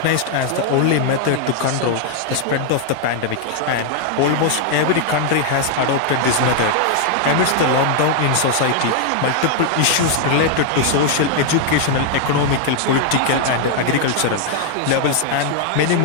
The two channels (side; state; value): both; different; correlation 0.00